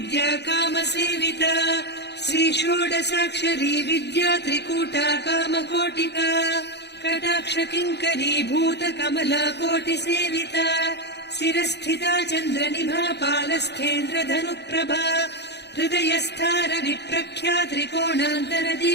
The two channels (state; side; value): late; right; 0.49 ms